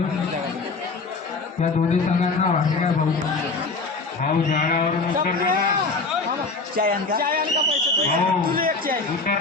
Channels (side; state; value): right; quieter; 3.9 dB